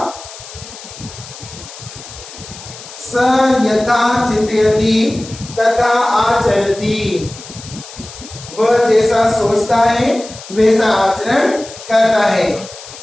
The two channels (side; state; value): left; noise; hiss, 15 dB below the sound